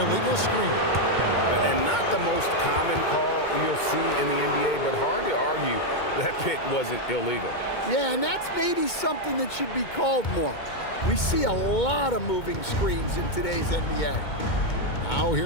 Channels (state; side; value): late; right; 2.2 ms